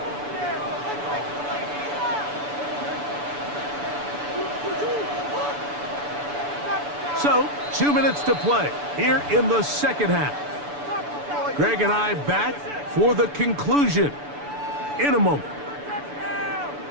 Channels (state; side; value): late; left; 6.9 ms